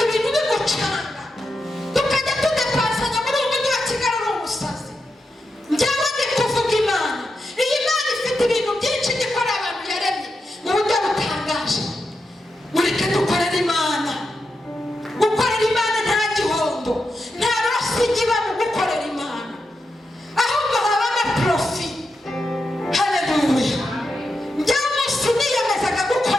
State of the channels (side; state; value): both; normal; correlation 0.87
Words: ibintu bigucanga, tukajya tudepasanya muri uyu mujyi wa Kigali uri umusazi. Njyewe ndi kuvuga Imana, iyi Mana ifite ibintu byinshi ikora abantu yaremye mu buryo butangaje. Mureke dukorere Imana. Gukorera Imana nta gihombo, nta rosi iba mu gukorera Imana, ahubwo habamo profi. Haleluya. Njyewe umunsi niyemezaga